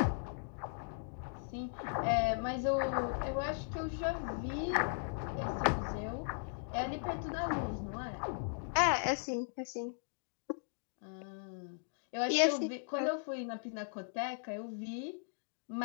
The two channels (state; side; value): silent; right; digital silence